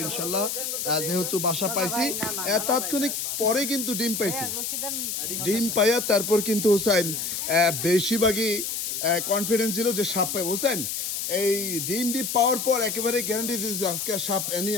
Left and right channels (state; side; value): noise; left; hiss, 3 dB below the sound